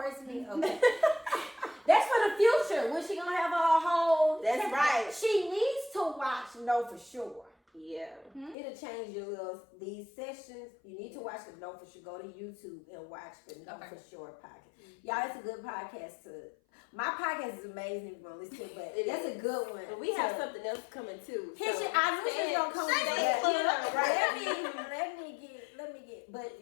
me? Okay. That's for the future. When she going to have a whole... That's right. She needs to watch Know For Sure. Yeah. It'll change these sessions. You need to watch the Know For Sure. Go to YouTube and watch the Know For Sure podcast. Y'all, it's a good podcast my podcast is amazing if you want to listen to it, but that's a good one. But we have something else coming too. I knew she was gonna come with let me get,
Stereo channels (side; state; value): right; drops out; at 8.6 s